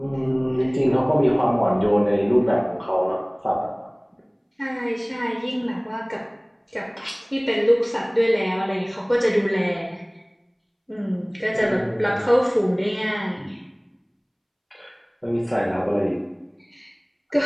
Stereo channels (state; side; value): identical; both; correlation 1.00